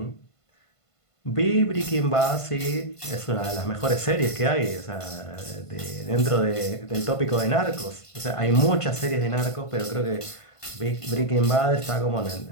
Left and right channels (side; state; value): right; late; 1.5 ms